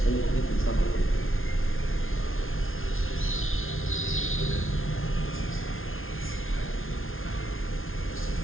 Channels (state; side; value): late; right; 0.60 ms